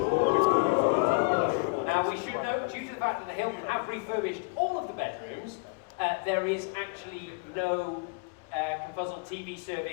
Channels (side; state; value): right; quieter; 32.4 dB